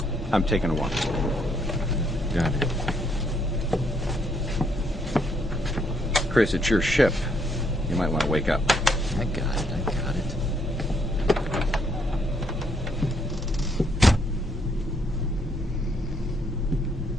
I'm taking a walk. Got it. Chris, it's your ship. You might want to wake up. I got it.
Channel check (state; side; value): normal; both; correlation 0.71